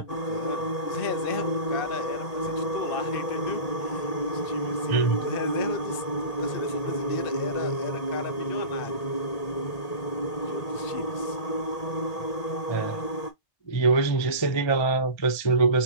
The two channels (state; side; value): late; right; 1.8 ms